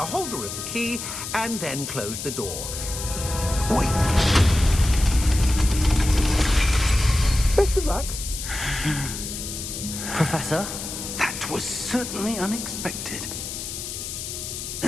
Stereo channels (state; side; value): noise; left; hiss, 7 dB below the sound